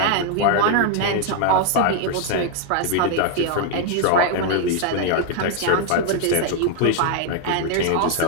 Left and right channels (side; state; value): both; different; correlation 0.00